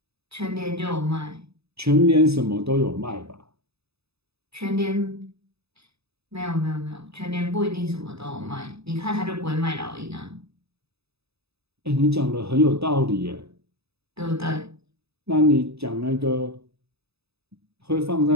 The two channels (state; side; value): late; left; 0.79 ms